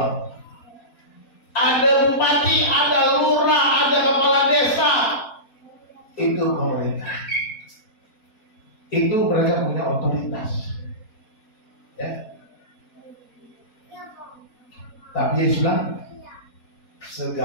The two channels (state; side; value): late; right; 4.2 ms